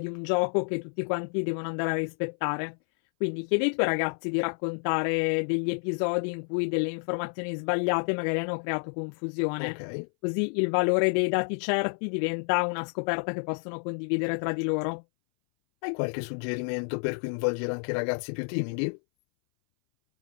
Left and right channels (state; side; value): silent; right; 59 dB below the other